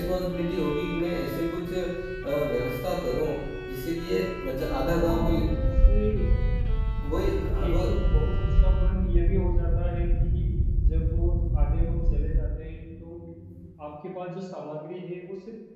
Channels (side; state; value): both; identical; correlation 1.00